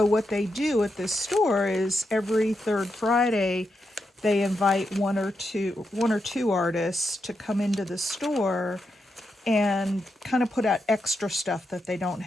what they do at this store is every third Friday they invite one or two artists to come into the store and kind of put out extra stuff that they don't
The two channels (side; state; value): both; normal; correlation 0.85